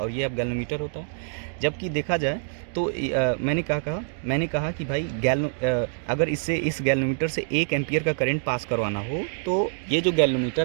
ये अब गैल्वेनोमीटर होता है। जबकि देखा जाए तो मैंने कहा कि भाई अगर इस गैल्वेनोमीटर से 1 एम्पियर का करंट पास करवाना हो तो ये जो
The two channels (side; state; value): left; silent; digital silence